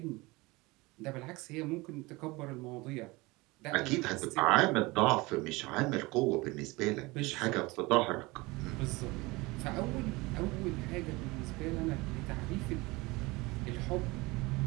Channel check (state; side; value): quieter; left; 23.1 dB